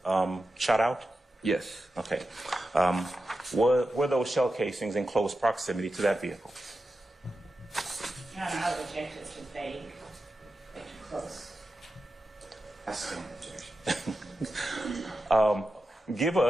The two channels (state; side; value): normal; both; correlation 0.91